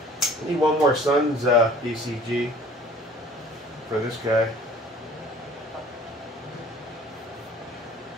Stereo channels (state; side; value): normal; both; correlation 0.49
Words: I need one more Suns DCG for this guy.